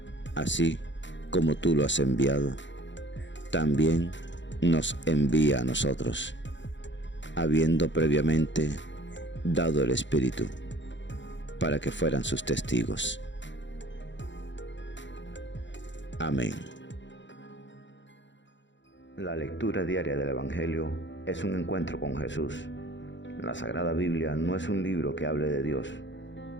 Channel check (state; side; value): late; right; 0.54 ms